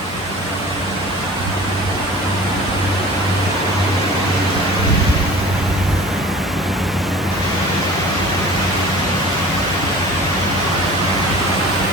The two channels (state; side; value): normal; both; correlation 0.42